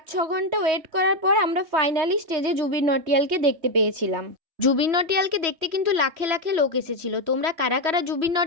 ঘন্টা ওয়েট করার পর আমরা ফাইনালি স্টেজে জুবিন নটিয়ালকে দেখতে পেয়েছিলাম। জুবিন নটিয়ালকে দেখতে কিন্তু লাখে লাখে লোক এসেছিল। তোমরা কারা কারা জুবিন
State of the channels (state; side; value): late; left; 3.1 ms